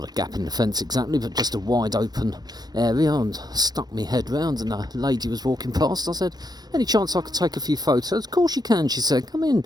a gap in the fence exactly, but just a wide open area, and stuck my head round, and a lady was walking past. I said, any chance I could take a few photos? Of course you can, she said, come in.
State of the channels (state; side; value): late; left; 0.19 ms